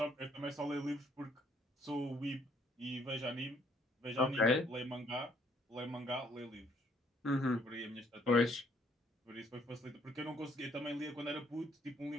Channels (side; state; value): both; normal; correlation 0.66